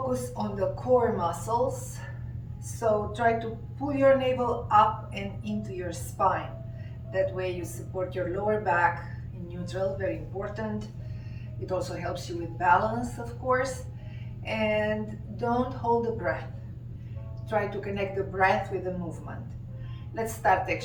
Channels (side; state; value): both; identical; correlation 1.00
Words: on the core muscles, so try to pull your navel up and into your spine. That way you support your lower back in neutral, very important. It also helps you with balance, of course. And don't hold the breath. Try to connect the breath with the movement. Let's start